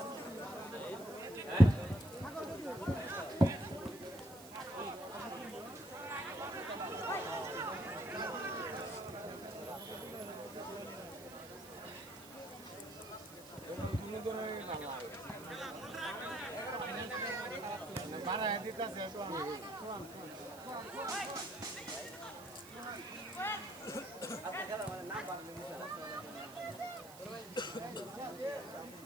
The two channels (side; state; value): right; noise; hiss, 17 dB below the sound